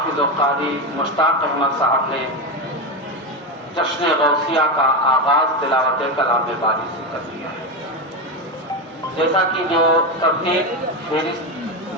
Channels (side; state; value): both; normal; correlation 0.14